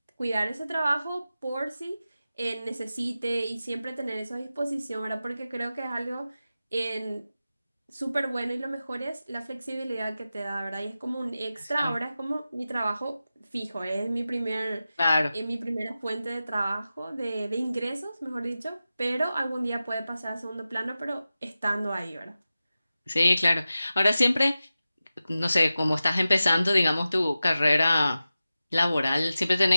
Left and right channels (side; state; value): both; inverted; correlation -0.94